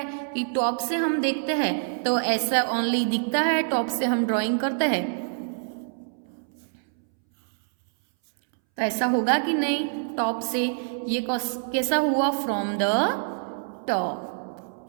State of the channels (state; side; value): silent; left; 61 dB below the other